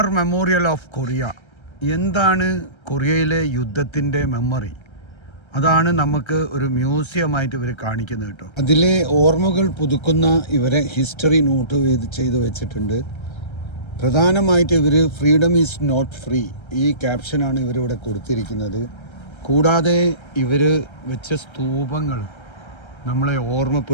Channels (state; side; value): late; right; 1.3 ms